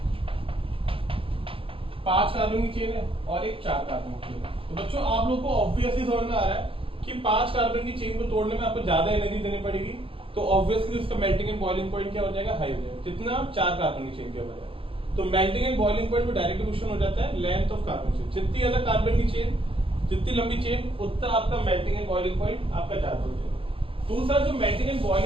5 कार्बन की चेन है और एक 4 कार्बन की चेन है। तो बच्चों आप लोग को ऑब्वियसली समझ में आ रहा है कि 5 कार्बन की चेन को तोड़ने में आपको ज्यादा एनर्जी देनी पड़ेगी, तो ऑब्वियसली उसका मेल्टिंग एंड बॉइलिंग पॉइंट क्या हो जाएगा? हाई हो जाएगा। जितना 4 कार्बन की चेन के बजाय, तो मेल्टिंग एंड बॉइलिंग पॉइंट में डायरेक्ट रिलेशन हो जाता है लेंथ ऑफ कार्बन चेन। जितनी ज्यादा कार्बन की चेन, जितनी लंबी चेन, उतना आपका मेल्टिंग एंड बॉइलिंग पॉइंट आपका ज्यादा हो जाएगा। दूसरा जो मेल्टिंग एंड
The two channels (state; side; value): late; left; 0.26 ms